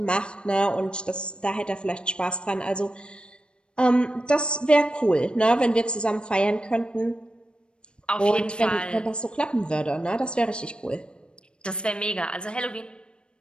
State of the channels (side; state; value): right; late; 0.054 ms